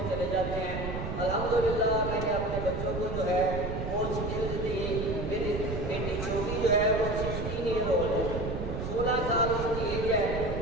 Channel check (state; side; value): noise; right; rumble, 5 dB below the sound